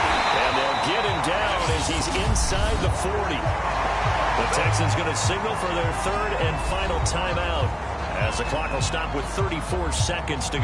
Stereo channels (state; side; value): identical; both; correlation 1.00